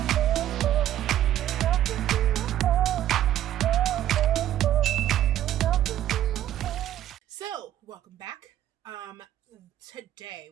So, welcome back. Today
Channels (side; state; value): left; quieter; 12.2 dB